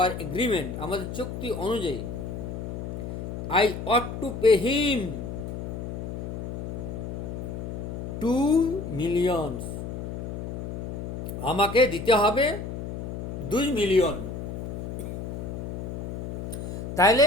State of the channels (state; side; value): noise; left; hum, 6 dB below the sound